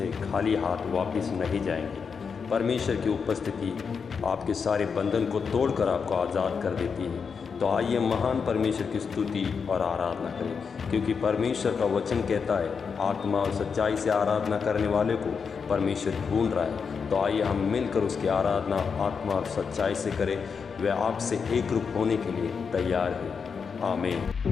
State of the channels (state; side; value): quieter; right; 5.9 dB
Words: खाली हाथ वापस नहीं जाएंगे। परमेश्वर की उपस्थिति आपके सारे बंधन को तोड़कर आपको आज़ाद कर देती है। तो आइए महान परमेश्वर की स्तुति और आराधना करें, क्योंकि परमेश्वर का वचन कहता है आत्मा और सच्चाई से आराधना करने वाले को परमेश्वर ढूंढ रहा है। तो आइए हम मिलकर उसकी आराधना आत्मा और सच्चाई से करें। वह आपसे एक रूप होने के लिए तैयार है। आमीन।